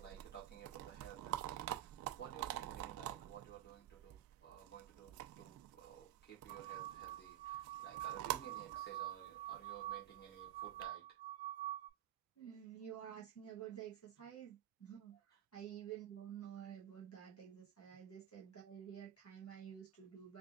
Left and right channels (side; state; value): left; quieter; 11.9 dB